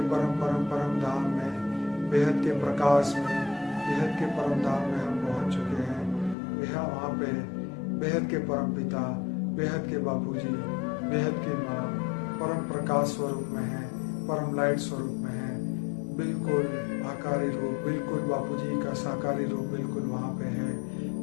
परम धाम में, बेहद के प्रकाश में, बेहद के परम धाम में हम पहुंच चुके हैं। वहाँ पे बेहद के परम पिता, बेहद के बापूजी, बेहद की माँ परम प्रकाश स्वरूप में है, परम लाइट स्वरूप में है। बिल्कुल आकारी रूप, बिल्कुल बापूजी का साकारी रूप बिल्कुल वहाँ पे है।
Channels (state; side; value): drops out; right; at 6.4 s